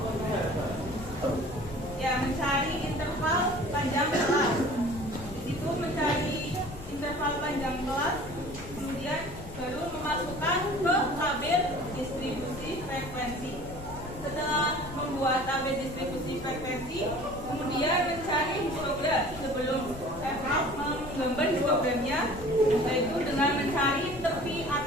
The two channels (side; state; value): left; noise; rumble, 14 dB below the sound